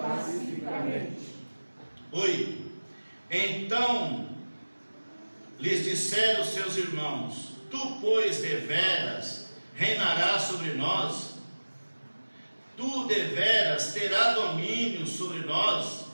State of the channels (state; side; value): inverted; both; correlation -1.00